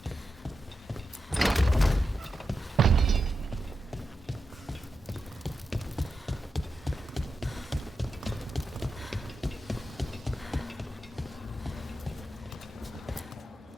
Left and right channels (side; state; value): both; normal; correlation 0.88